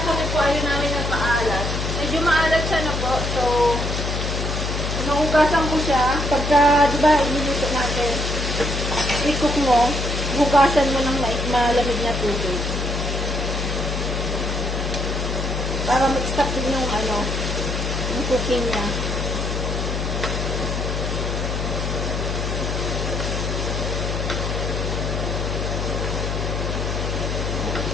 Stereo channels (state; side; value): noise; left; hum, 2 dB below the sound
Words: kami po ayaw namin ng maalat, medyo maalat siya na po. So, nahugasan ko siya. Pagka, di ba, iniluto natin, i-cook mo, hugasan mo ng malamig na tubig. Para mag-stop din yung yung cooking niya.